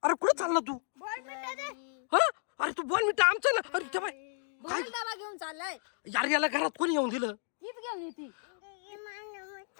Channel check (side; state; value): right; silent; digital silence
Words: कुठं चालला तू बोलमिटा दे. हा अरे तू बॉनविटा आमचं ना अरे त्या बाई काय बोल डबा घेऊन चाललाय. यार याला घरात कोणी येऊन दिलं हीच घेऊन येते.